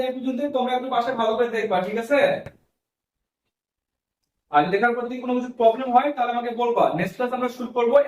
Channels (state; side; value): identical; both; correlation 1.00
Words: এই পর্যন্তই, তোমরা একটু পাশে ভালো করে দেখবা, ঠিক আছে? আর দেখার পর যদি কোনো কিছু প্রবলেম হয় তাহলে আমাকে বলবা, নেক্সট ক্লাস আমরা শুরু করব